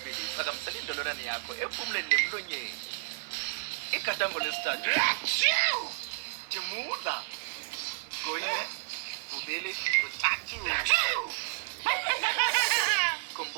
phakamisela indololwane yakho ephumuleni nemlonyeni. Igadango lesithathu thimula. Kunye, kubili, kuthathu.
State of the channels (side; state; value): left; silent; digital silence